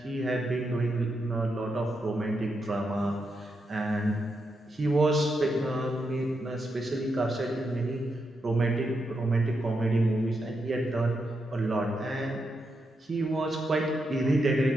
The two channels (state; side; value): normal; both; correlation 0.84